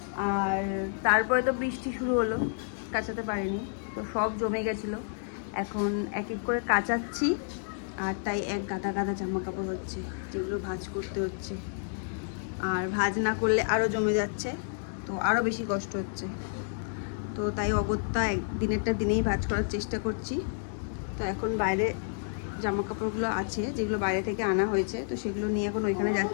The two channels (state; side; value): silent; right; digital silence